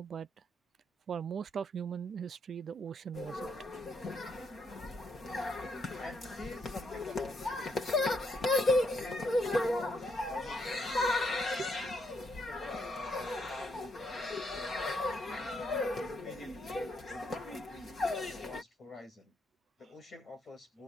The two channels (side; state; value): both; normal; correlation 0.75